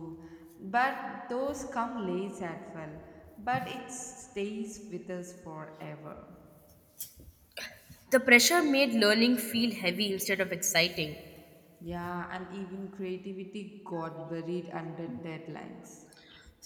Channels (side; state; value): both; identical; correlation 1.00